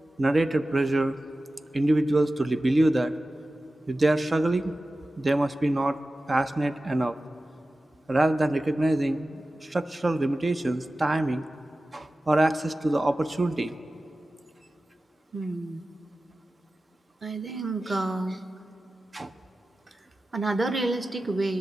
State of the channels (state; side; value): normal; both; correlation 0.95